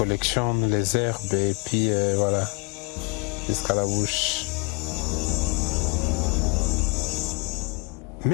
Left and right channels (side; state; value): right; quieter; 31.4 dB